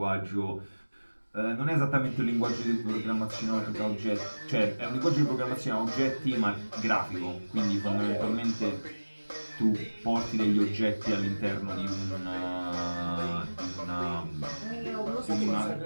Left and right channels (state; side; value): inverted; both; correlation -1.00